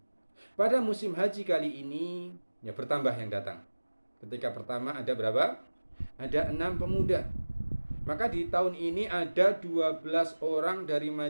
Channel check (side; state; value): both; inverted; correlation -1.00